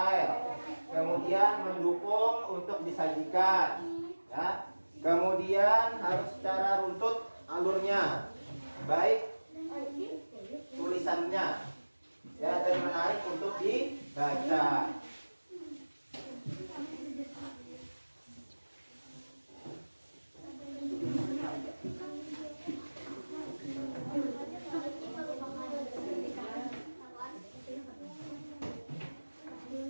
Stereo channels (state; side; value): inverted; both; correlation -1.00